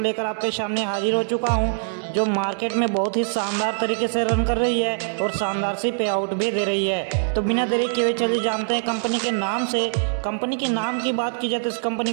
आपके सामने हाजिर हो चुका हूं, जो मार्केट में बहुत ही शानदार तरीके से रन कर रही है और शानदार सी पे आउट भी दे रही है। तो बिना देरी किए हुए चलिए जानते हैं कंपनी के नाम से। कंपनी के नाम की बात की जाए तो इस कंपनी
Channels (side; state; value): left; silent; digital silence